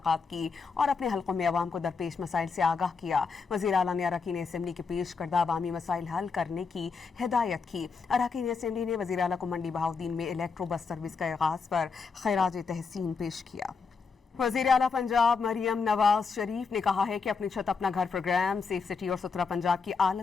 की और अपने हलकों में अवाम को दरपेश मसाइल से आगाह किया। वज़ीर आला ने अरकान असम्बली के पेश करदा अवामी मसाइल हल करने की हिदायत की। अरकान असम्बली ने वज़ीर आला को मंडी बहाउद्दीन में इलेक्ट्रो बस सर्विस का आगाज पर खैराज तहसीन पेश किया। वज़ीर आला पंजाब मरियम नवाज शरीफ ने कहा है कि अपनी छत अपना घर प्रोग्राम सेफ सिटी और सुथरा पंजाब की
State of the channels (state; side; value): quieter; right; 5.1 dB